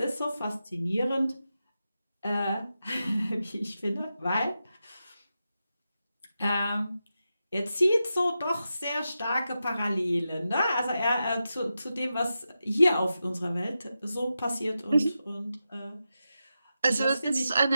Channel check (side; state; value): both; inverted; correlation -0.90